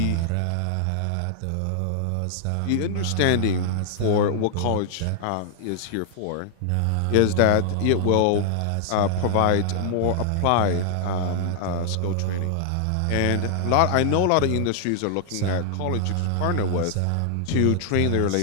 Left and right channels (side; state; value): both; different; correlation 0.00